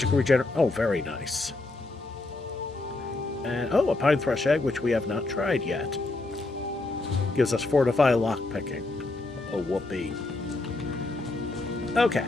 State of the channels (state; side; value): quieter; right; 3.1 dB